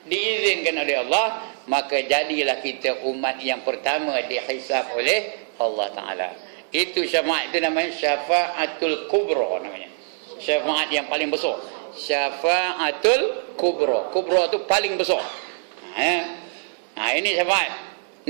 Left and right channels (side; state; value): left; silent; 63 dB below the other